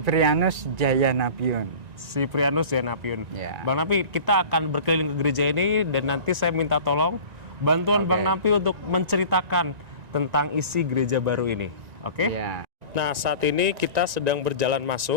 Jayanapiun. Siprianus Jayanapiun. Ya. Bang Napi, kita akan berkeliling ke gereja ini dan nanti saya minta tolong bantuan Bang Napi untuk menceritakan tentang isi gereja baru ini. Oke? Ya. Nah, saat ini kita sedang berjalan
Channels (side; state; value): left; late; 1.9 ms